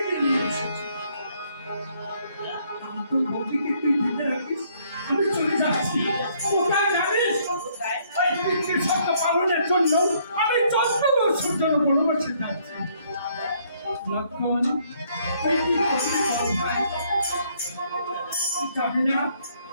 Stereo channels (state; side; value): inverted; both; correlation -0.67